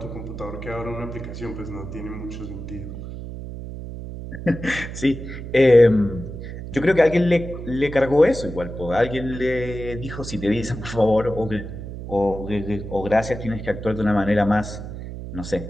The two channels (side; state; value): right; noise; hum, 9 dB below the sound